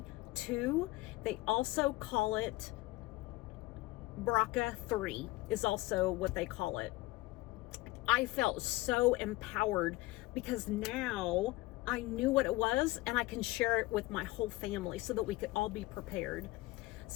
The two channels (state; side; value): quieter; right; 19.7 dB